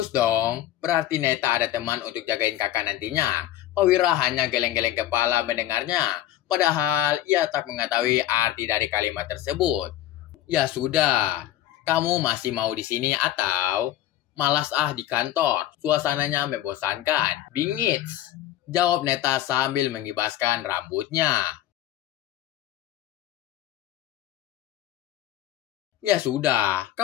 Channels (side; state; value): right; quieter; 13.1 dB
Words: dong, berarti Neta ada teman untuk jagain kakak nantinya. Pak Wira hanya geleng-geleng kepala mendengarnya. Padahal ia tak mengetahui arti dari kalimat tersebut. Ya sudah, kamu masih mau di sini atau malas di kantor? Suasananya membosankan. Bingits, jawab Neta sambil mengibaskan rambutnya. Ya sudah,